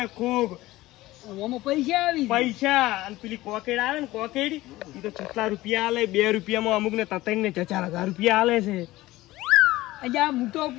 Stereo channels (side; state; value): right; quieter; 17.7 dB